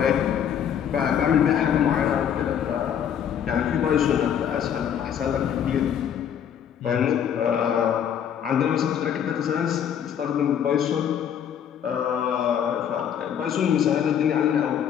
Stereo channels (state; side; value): quieter; right; 8.9 dB